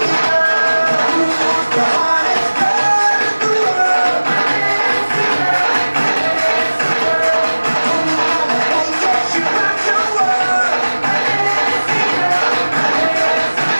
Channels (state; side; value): inverted; both; correlation -1.00